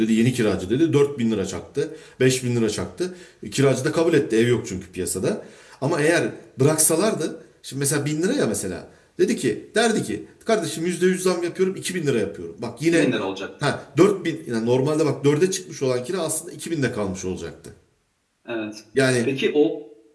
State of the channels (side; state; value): both; identical; correlation 1.00